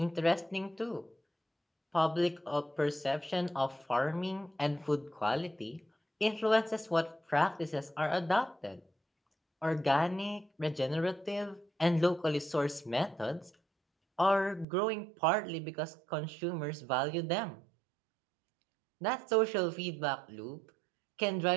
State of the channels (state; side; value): drops out; left; at 14.7 s